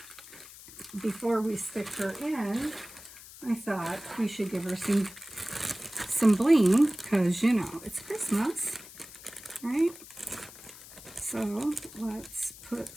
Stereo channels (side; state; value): left; noise; hiss, 17 dB below the sound